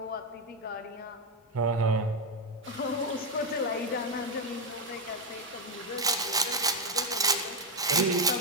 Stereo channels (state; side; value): normal; both; correlation 0.07